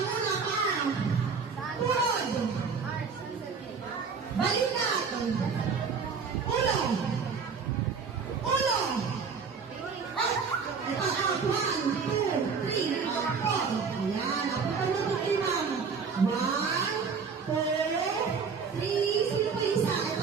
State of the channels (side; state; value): left; quieter; 5.6 dB